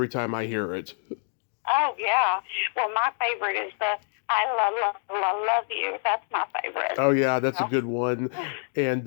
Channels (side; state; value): right; silent; digital silence